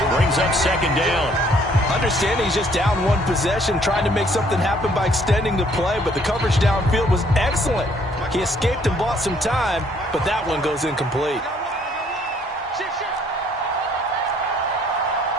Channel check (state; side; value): normal; both; correlation 0.63